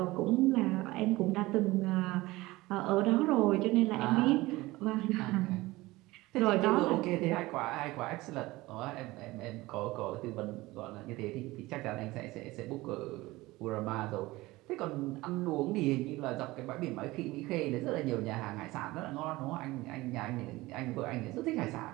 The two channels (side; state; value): left; quieter; 19.7 dB